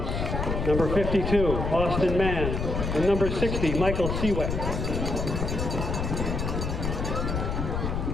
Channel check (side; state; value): left; noise; rumble, 2 dB below the sound